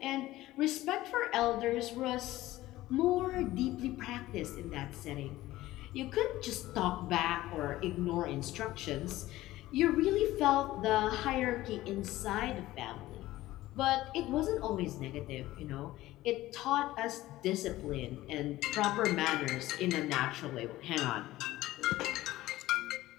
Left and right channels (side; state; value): right; quieter; 16.5 dB